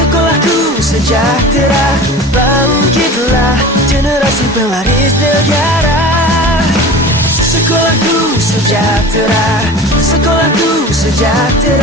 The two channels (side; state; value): both; normal; correlation 0.36